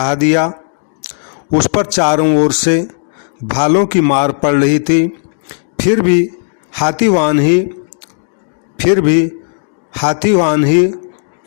दिया। उस पर चारों ओर से भालों की मार पड़ रही थी, फिर भी हाथीवान ही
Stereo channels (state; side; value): silent; right; digital silence